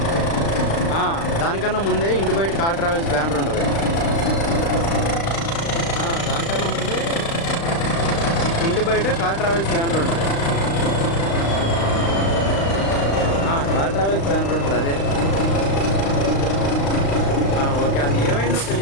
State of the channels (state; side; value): late; right; 35 ms